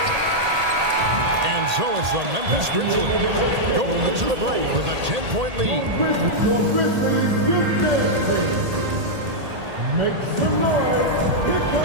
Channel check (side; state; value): left; late; 1.8 ms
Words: And so it's the Memphis Grizzlies going into the break with a 10-point lead.